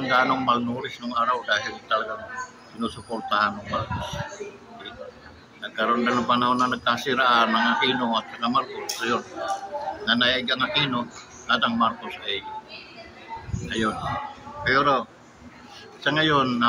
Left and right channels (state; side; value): identical; both; correlation 1.00